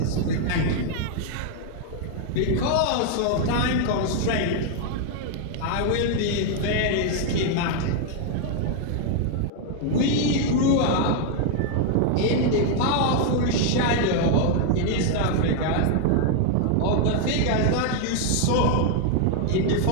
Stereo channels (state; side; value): different; both; correlation 0.00